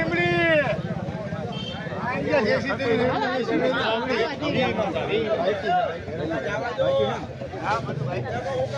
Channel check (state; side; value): identical; both; correlation 1.00